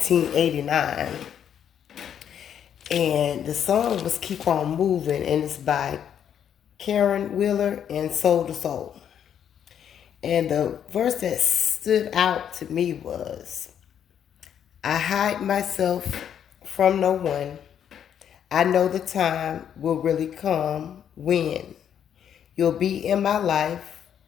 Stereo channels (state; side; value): quieter; right; 9.0 dB